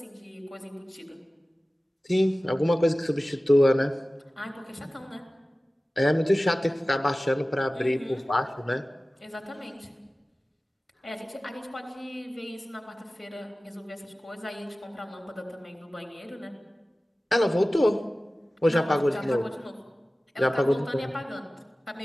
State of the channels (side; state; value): both; normal; correlation 0.97